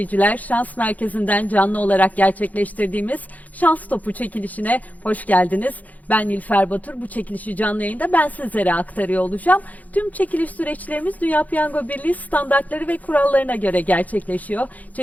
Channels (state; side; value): late; right; 0.077 ms